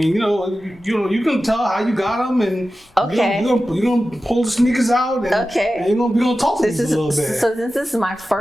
you can tell how you got them, and okay, you're gonna pull the sneakers out, and, and we're gonna talk to these a little bit. So since this is my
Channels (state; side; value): normal; both; correlation 0.94